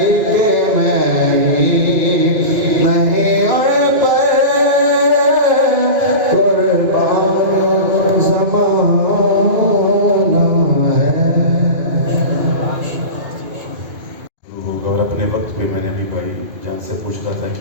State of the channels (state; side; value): late; left; 2.4 ms